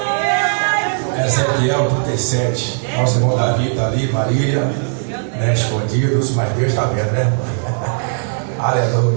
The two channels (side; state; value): left; silent; digital silence